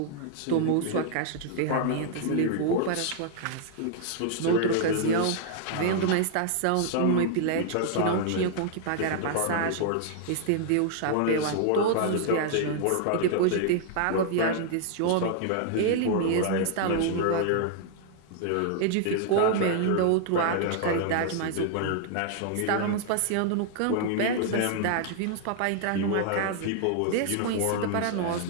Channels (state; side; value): different; both; correlation -0.01